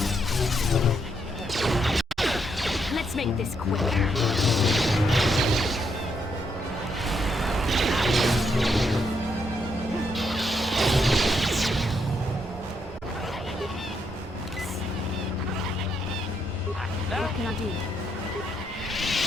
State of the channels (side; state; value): both; normal; correlation 0.77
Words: Let's make this quick. What can I do?